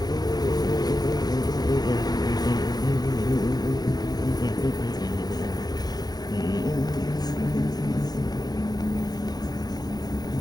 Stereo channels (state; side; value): late; right; 0.19 ms